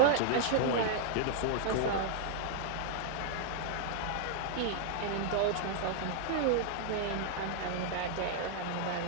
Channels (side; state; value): both; different; correlation -0.01